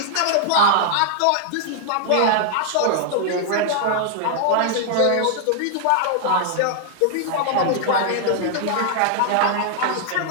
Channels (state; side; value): different; both; correlation -0.01